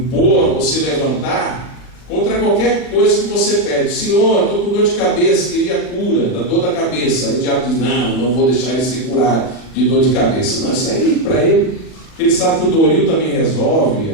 ou se levantar contra qualquer coisa que você pede. Senhor, estou com dor de cabeça, queria cura da dor da cabeça. Aí o diabo diz, não vou deixar ele se curar de dor de cabeça. Não, isso aí para ele, ele sabe que o Doril também resolve,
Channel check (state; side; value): late; right; 40 ms